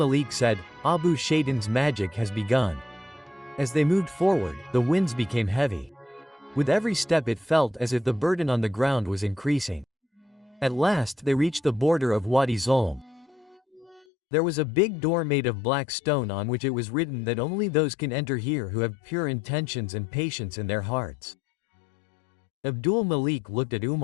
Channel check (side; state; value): right; drops out; at 14.1 s